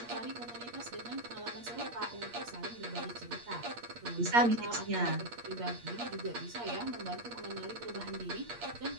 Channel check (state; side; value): late; left; 8.5 ms